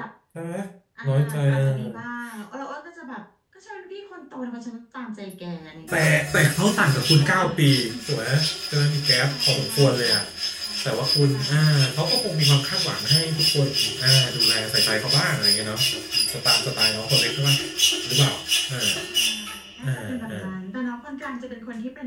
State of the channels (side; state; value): both; identical; correlation 1.00